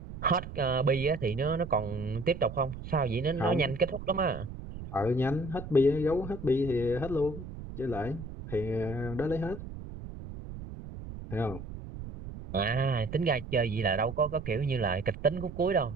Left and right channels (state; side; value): noise; right; rumble, 11 dB below the sound